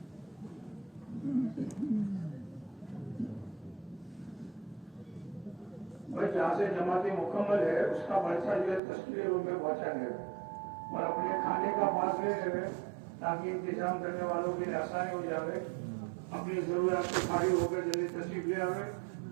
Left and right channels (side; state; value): left; drops out; at 8.8 s